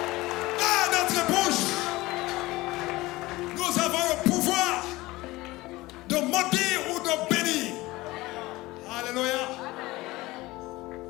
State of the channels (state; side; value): quieter; right; 19.8 dB